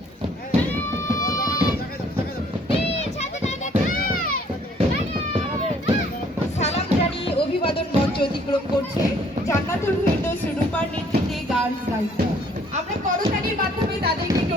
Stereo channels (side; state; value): both; normal; correlation 0.60